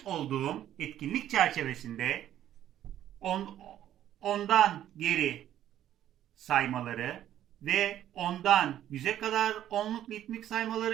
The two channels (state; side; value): quieter; left; 11.7 dB